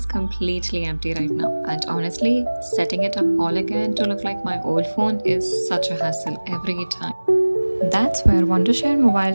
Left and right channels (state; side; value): inverted; both; correlation -1.00